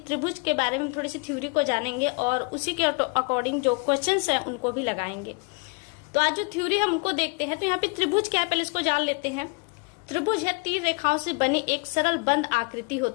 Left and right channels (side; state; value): right; quieter; 32.0 dB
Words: के बारे में थोड़ी सी थ्योरी को जानेंगे और उसी के अकॉर्डिंग जो क्वेश्चंस हैं उनको भी लगाएंगे। तो आज जो थ्योरी हम उनको देखते हैं, तो यहाँ पे त्रिभुज क्या है पहले इसको जान लेते हैं। त्रिभुज है तीन रेखाओं से बनी एक सरल बंद आकृति